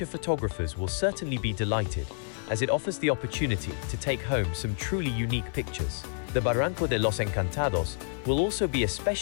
photographers will certainly be delighted, as it offers the opportunity to take home some truly unique pictures. The Barranco de los Encantados will also be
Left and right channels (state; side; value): silent; right; 59 dB below the other